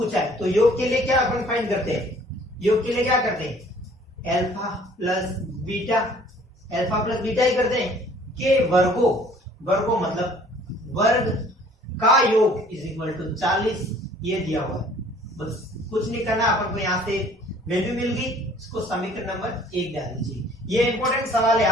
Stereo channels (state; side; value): normal; both; correlation 0.54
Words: है। तो योग के लिए क्या अपन फाइंड करते हैं, योग के लिए क्या करते हैं अल्फा प्लस बीटा ही करते हैं। के वर्गों मतलब वर्ग का योग इज इक्वल टू 40, ये दिया हुआ है। बस कुछ नहीं करना, अपन को यहाँ से वैल्यू मिल गई, इसको समीकरण नंबर 1 डाल दीजिए। ये इंपॉर्टेंट सवाल है।